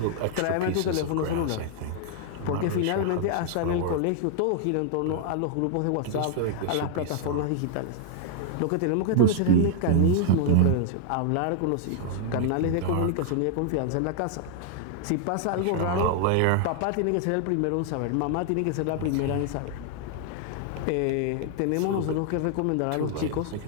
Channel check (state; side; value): different; both; correlation 0.00